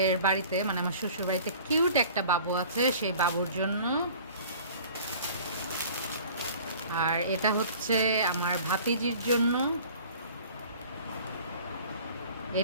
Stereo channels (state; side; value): inverted; both; correlation -0.47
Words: বাড়িতে, মানে আমার শ্বশুর বাড়িতে কিউট একটা বাবু আছে, সেই বাবুর জন্য। আর এটা হচ্ছে আমার ভাতিজির জন্য।